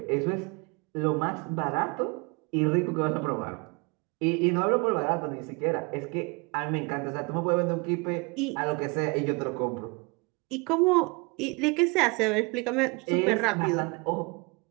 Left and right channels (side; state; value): left; quieter; 28.5 dB